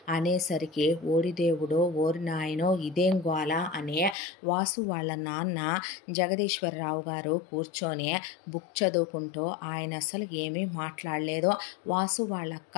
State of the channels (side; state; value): right; drops out; at 4.2 s